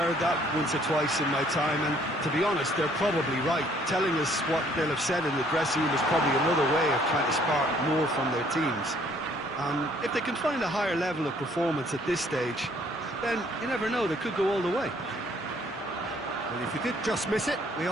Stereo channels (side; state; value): both; normal; correlation 0.62